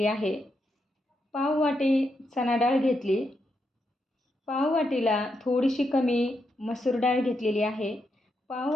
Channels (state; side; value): normal; both; correlation 0.82